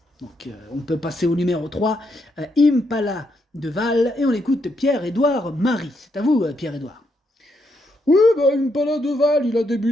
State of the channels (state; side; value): normal; both; correlation 0.78